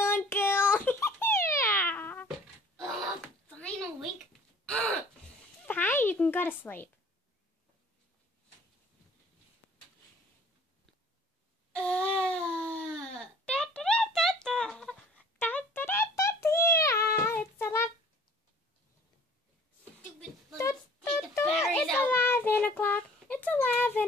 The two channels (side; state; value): both; normal; correlation 0.51